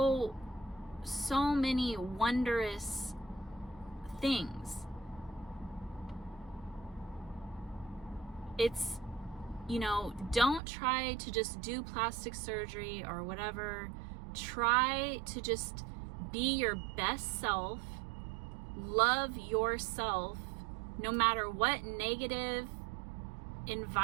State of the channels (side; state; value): left; drops out; at 10.6 s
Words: many wondrous things. It's, you know, don't try to just do plastic surgery or whatever. Try to just be your best self. Love yourself, no matter what negative